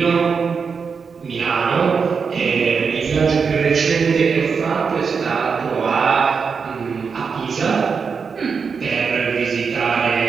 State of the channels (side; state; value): left; quieter; 5.7 dB